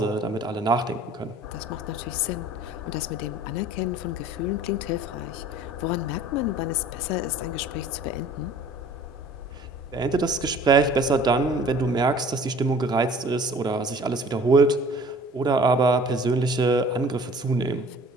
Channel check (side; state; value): both; normal; correlation 0.48